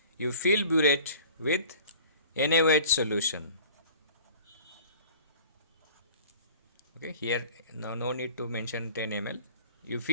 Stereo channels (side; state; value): both; inverted; correlation -0.46